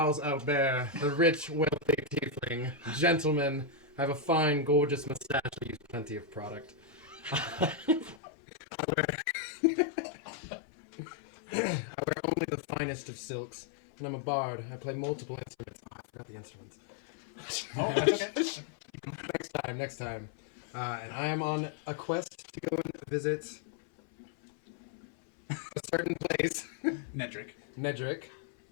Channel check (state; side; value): drops out; right; at 8.2 s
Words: Albert, the rich, wealthy tiefling. Gentleman. I have a fine, gorgeous mustache. I use plenty of product. I wear only the finest of silks. And I'm a bard. I play multiple instruments. Oh, I forgot the instruments. Oh, that's okay. Next time. And I am on a quest to go and visit a certain place, Nedrick. Nedrick,